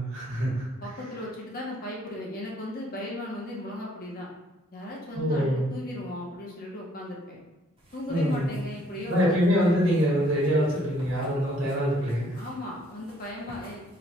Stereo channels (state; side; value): normal; both; correlation 0.64